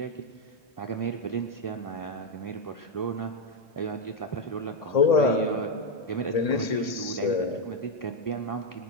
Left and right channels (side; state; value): right; late; 1.8 ms